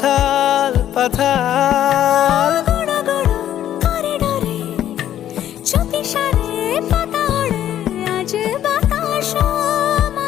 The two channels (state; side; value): quieter; right; 11.4 dB